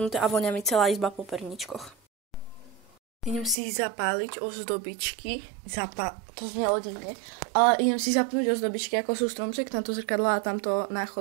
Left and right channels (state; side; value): drops out; left; at 3.6 s